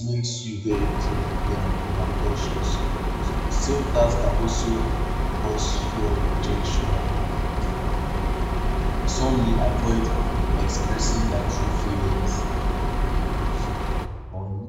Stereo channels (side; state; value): both; identical; correlation 1.00